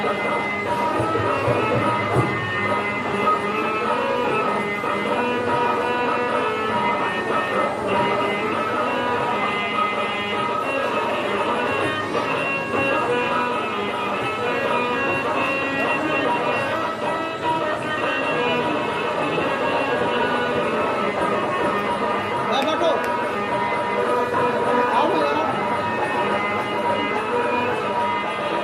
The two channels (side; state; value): both; identical; correlation 1.00